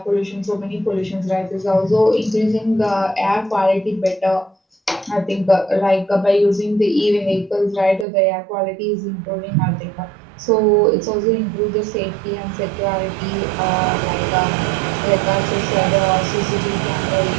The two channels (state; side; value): drops out; left; at 8.1 s